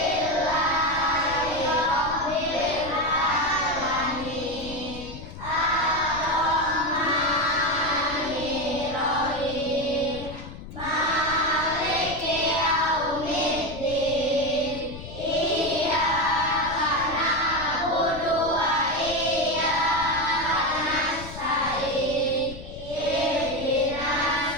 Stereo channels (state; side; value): noise; left; rumble, 13 dB below the sound